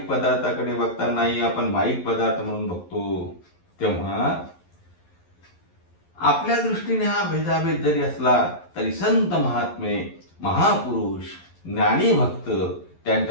पदार्थाकडे बघतानाही आपण माईक पदार्थ म्हणून बघतो. तेव्हा आपल्या दृष्टीने हा भेदाभेद जरी असला तरी संत महात्मे महापुरुष ज्ञानी भक्त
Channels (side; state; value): right; late; 11 ms